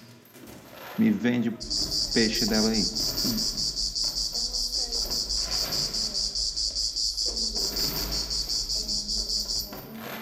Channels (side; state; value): both; identical; correlation 1.00